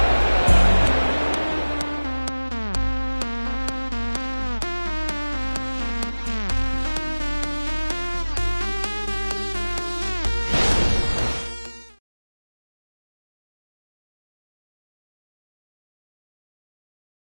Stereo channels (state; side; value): inverted; both; correlation -1.00